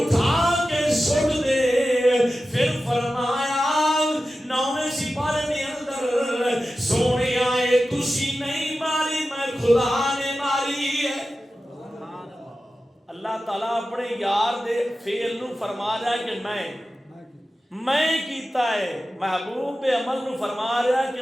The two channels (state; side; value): normal; both; correlation 0.93